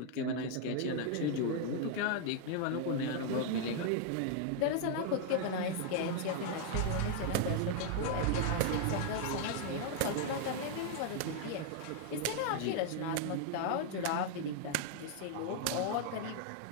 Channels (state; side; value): different; both; correlation 0.00